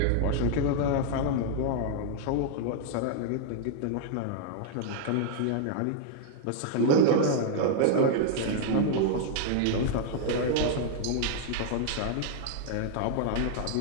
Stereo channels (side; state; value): both; different; correlation 0.00